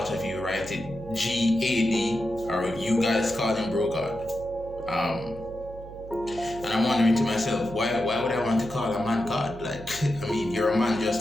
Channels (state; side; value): noise; right; hum, 15 dB below the sound